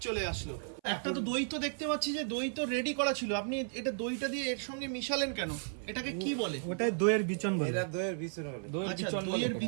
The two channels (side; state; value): left; silent; 55 dB below the other